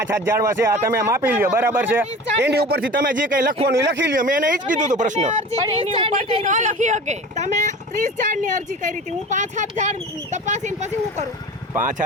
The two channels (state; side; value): normal; both; correlation 0.37